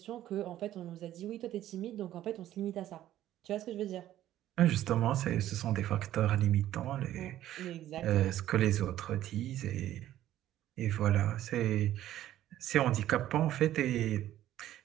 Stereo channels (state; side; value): quieter; left; 13.0 dB